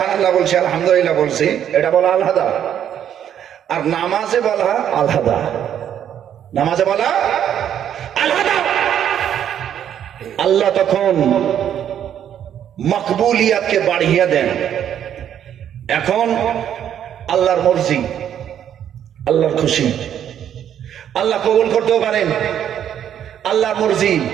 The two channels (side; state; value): left; quieter; 9.7 dB